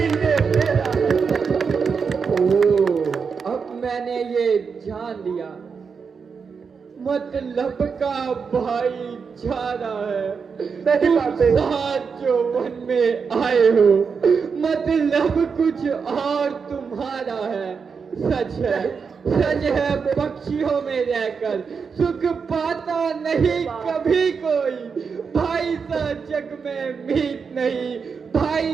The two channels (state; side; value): quieter; left; 5.7 dB